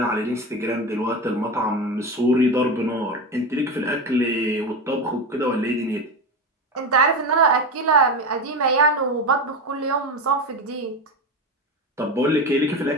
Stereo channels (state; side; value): normal; both; correlation 0.21